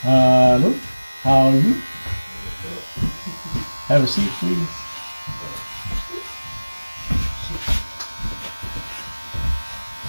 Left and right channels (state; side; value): inverted; both; correlation -1.00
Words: Hello, how are you? Have a seat, please.